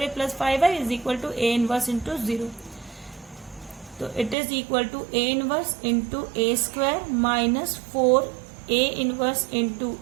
plus 5i is equal to a inverse into 0, तो it is equal to a inverse into a square minus 4a inverse into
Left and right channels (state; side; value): drops out; left; at 4.4 s